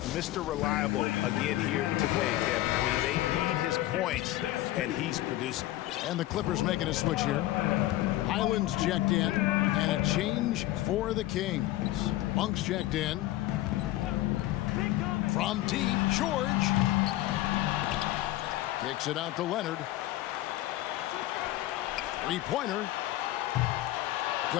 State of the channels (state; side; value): quieter; right; 15.8 dB